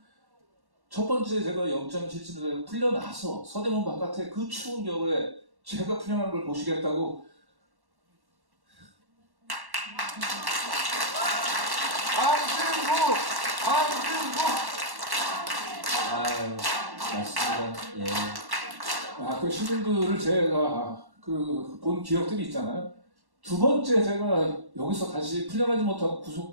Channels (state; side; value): late; left; 1.1 ms